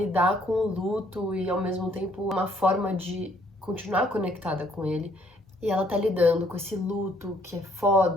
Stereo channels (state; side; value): normal; both; correlation 0.65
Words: com o luto e ao mesmo tempo uma forma de continuar conectada com ele. E ela tá lidando com esse luto que é